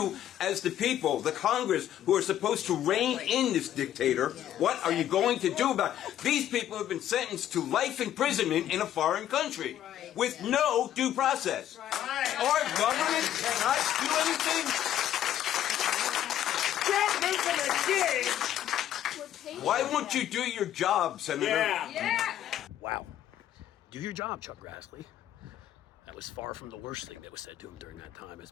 as the people, the Congress, who are supposed to rein in this dictator, what are you going to do about it? These people have been sentenced to life imprisonment in a foreign country with no due process. Our government cannot do anything. Why won't you do your job, Senator? Yeah. Wow. Do your job, Chuck Grassley. That was far from the worst thing that was said to him during that time, as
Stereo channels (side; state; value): right; quieter; 11.5 dB